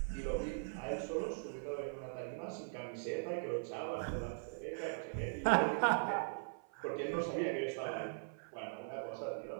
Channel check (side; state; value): left; silent; 51 dB below the other